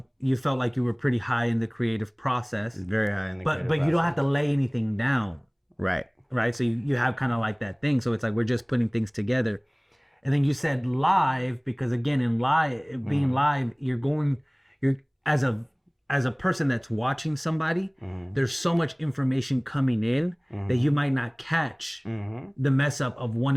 you felt like you were pretty high in the creative process. Very high in the creative But process. you don't have to lay anything down. Right. So you have kind of like that thing. So it's like we're just putting things together. And then you said live because again in being live, you're as a person that's watching somebody, there's so much information coming in that you might not catch the mess up of one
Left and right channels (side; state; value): both; identical; correlation 1.00